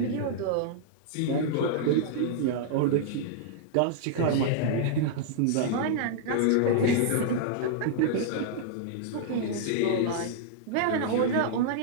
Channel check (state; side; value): different; both; correlation -0.02